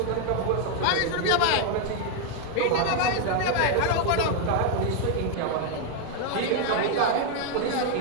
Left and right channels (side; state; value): both; different; correlation 0.01